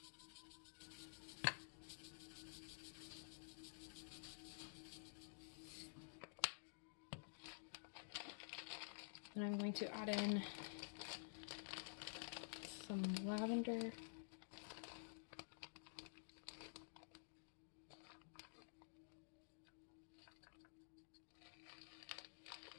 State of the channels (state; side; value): silent; right; digital silence